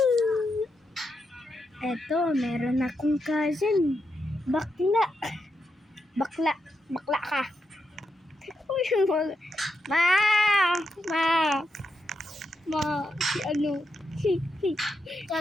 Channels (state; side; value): normal; both; correlation 0.84